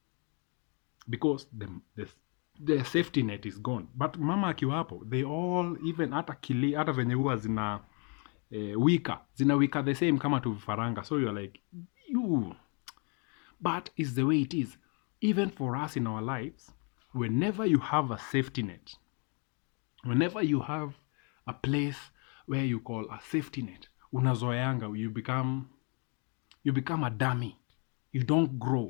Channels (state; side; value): quieter; right; 36.5 dB